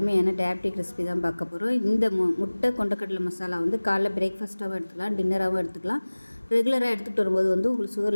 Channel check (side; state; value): both; inverted; correlation -1.00